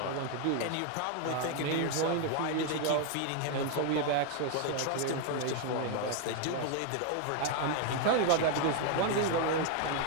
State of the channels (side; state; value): both; different; correlation 0.01